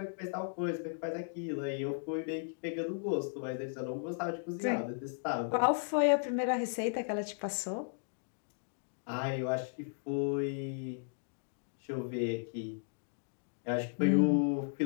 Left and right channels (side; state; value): right; silent; digital silence